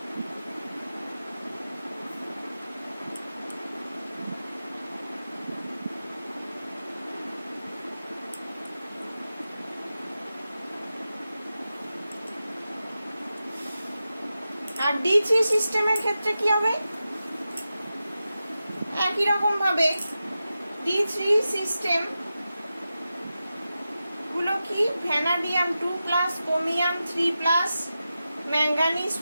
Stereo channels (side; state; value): both; inverted; correlation -0.92